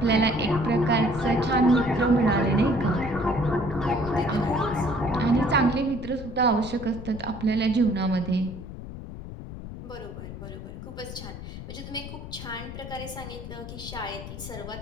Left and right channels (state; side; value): noise; left; rumble, 10 dB below the sound